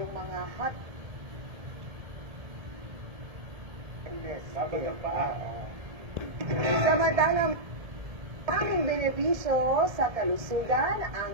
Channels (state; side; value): late; left; 1.7 ms